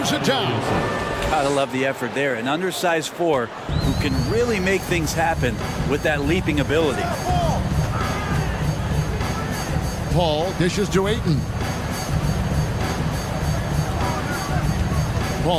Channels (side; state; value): both; identical; correlation 1.00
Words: it down. Gotta love the effort there. An undersized 4 who can really make things happen with that leaping ability. Paul dishes to Ayton.